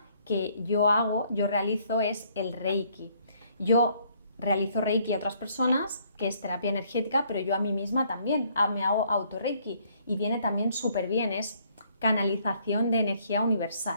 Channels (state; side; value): inverted; both; correlation -0.65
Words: que yo realizo es el Reiki. Yo realizo Reiki a otras personas, que es terapia energética, pero yo a mí misma también me hago auto-Reiki y viene también súper bien, es canalización de energía